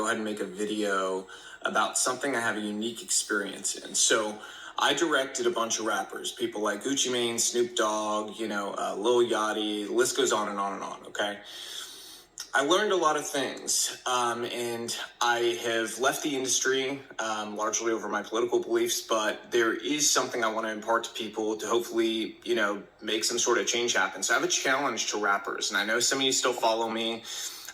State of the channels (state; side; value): identical; both; correlation 1.00